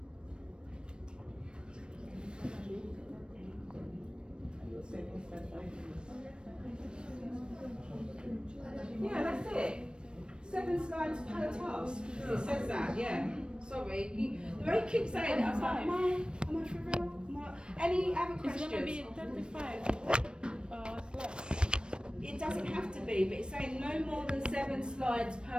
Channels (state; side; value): late; left; 0.054 ms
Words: Yeah, that's it. 7 slides per task. It says that, yeah. Sorry. The way you keep saying it, I was like, am I for real? Any other questions? It's gonna be 35 slides. It doesn't have to be, but it's saying no more than 7 slides